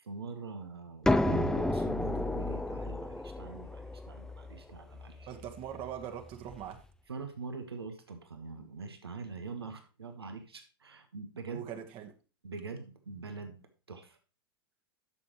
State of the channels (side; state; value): both; normal; correlation 0.66